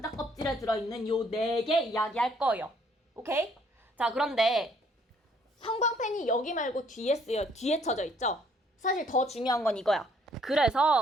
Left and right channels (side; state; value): both; normal; correlation 0.64